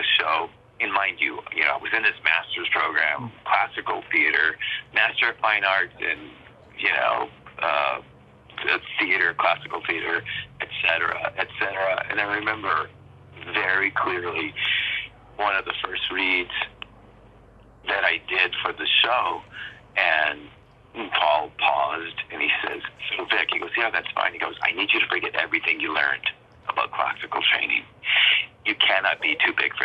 show, and mind you, I was in this master's program, classical theater, Master of Fine Arts, and, theater, classical theater, et cetera, et cetera. And I remember very clearly one of the first reads that I did for the show, and Paul paused, and he says, "So, Vic," he goes, "Yeah, that's fine." He goes, "I need you to forget everything you learned about classical training. You cannot be too big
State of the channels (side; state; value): both; identical; correlation 1.00